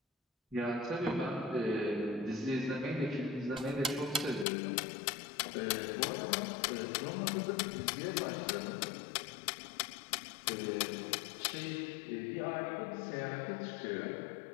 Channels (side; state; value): right; drops out; at 4.5 s